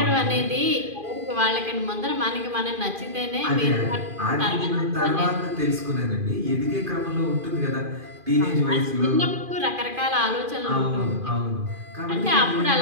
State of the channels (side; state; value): left; late; 2.4 ms